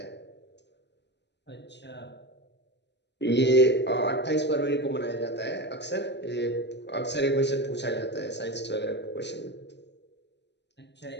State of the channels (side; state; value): right; late; 0.50 ms